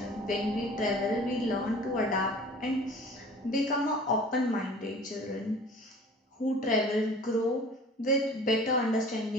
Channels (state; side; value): normal; both; correlation 0.45